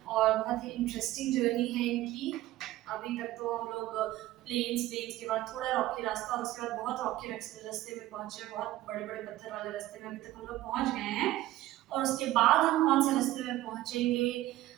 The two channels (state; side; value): quieter; left; 15.7 dB